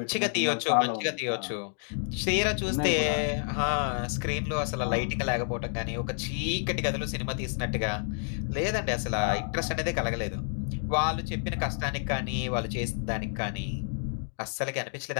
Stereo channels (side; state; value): right; silent; 58 dB below the other